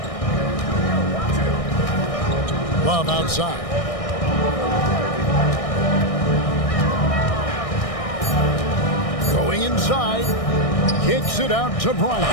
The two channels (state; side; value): late; right; 1.6 ms